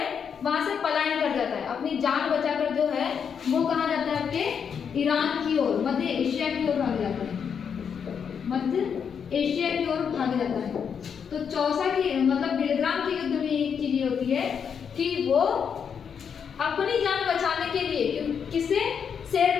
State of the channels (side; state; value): right; quieter; 7.1 dB